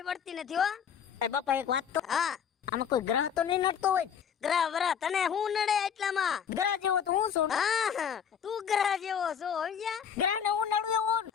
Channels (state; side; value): quieter; right; 7.9 dB